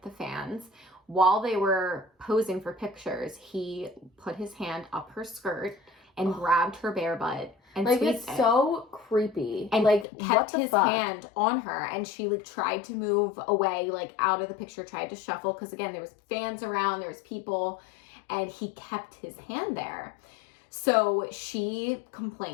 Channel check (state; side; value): drops out; right; at 10.1 s